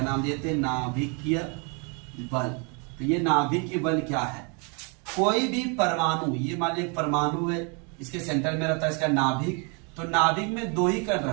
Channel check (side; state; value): left; quieter; 34.7 dB